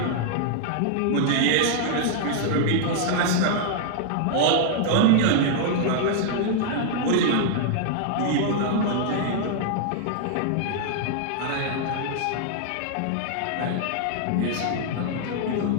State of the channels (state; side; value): different; both; correlation -0.01